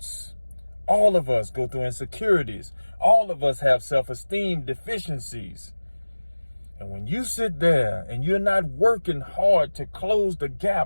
All of us go through insecurities. All of us have self-esteem deficiencies. And when you sit there and you're not working hard to close the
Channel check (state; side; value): inverted; both; correlation -1.00